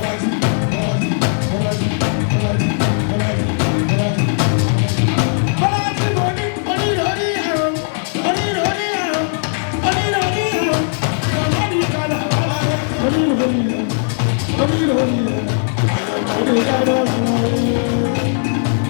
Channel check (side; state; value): right; silent; digital silence